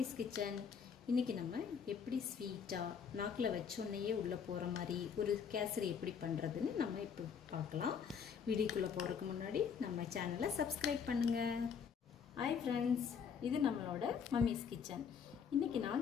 kitchen. இன்றைக்கி நம்ம எப்படி ஸ்வீட்டாக நாக்கில் வச்சோன்னையே உள்ளே போகிற மாதிரி ஒரு கேசரி எப்படி பண்ணுறதுன்னு நம்ம இப்போ பார்க்கலாம். வீடியோக்குள்ளே போகிறதுக்கு முன்னாடி நம்ம சேனலை சப்ஸ்கிரைப் பண்ணுங்கள். ஹாய் ஃப்ரெண்ட்ஸ், இது நம்மளோட மம்மிஸ் கிச்சன். இன்றைக்கி நான்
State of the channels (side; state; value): right; quieter; 6.9 dB